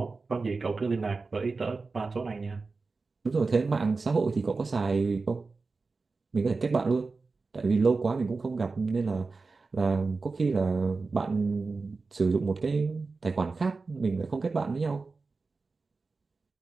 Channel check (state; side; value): quieter; left; 4.1 dB